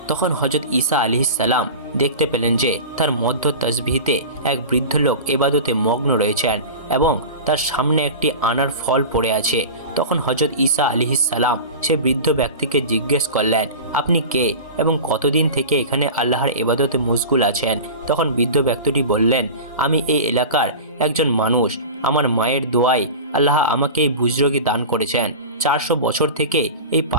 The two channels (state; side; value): inverted; both; correlation -0.31